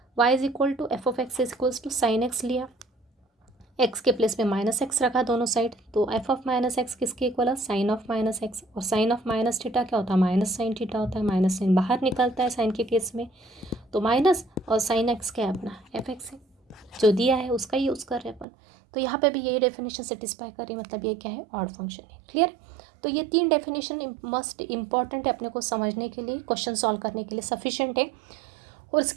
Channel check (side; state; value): left; drops out; at 18.4 s